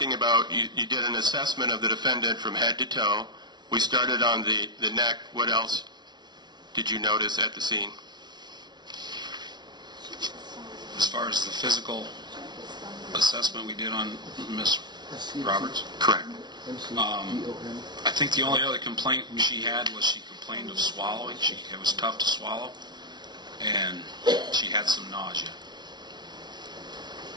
about, you did an assessment of the defendant from head to toe. We started on the neck. What else did you notice at the scene? As far as the physical assessment we did on Miss Roberts, Correct. I think the only other complaint she had was she complained of swallowing. It was tough to swallow, and she had some nausea.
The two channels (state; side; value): late; left; 0.20 ms